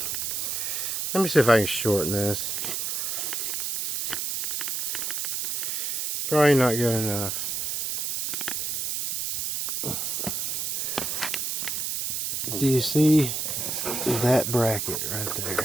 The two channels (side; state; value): right; noise; hiss, 1 dB below the sound